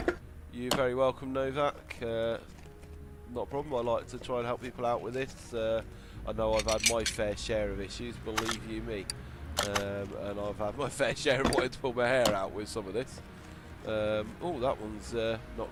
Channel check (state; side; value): identical; both; correlation 1.00